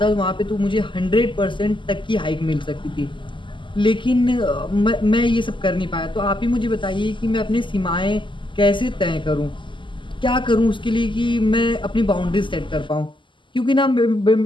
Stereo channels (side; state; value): right; late; 0.24 ms